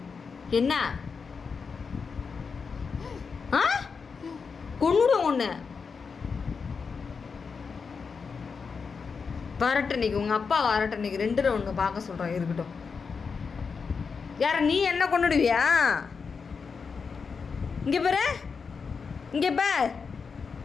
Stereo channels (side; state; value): right; quieter; 5.4 dB